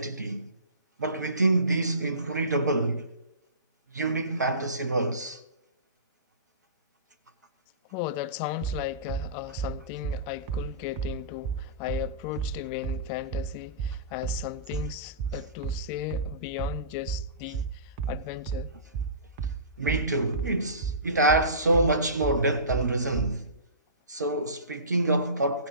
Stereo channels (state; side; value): inverted; both; correlation -0.35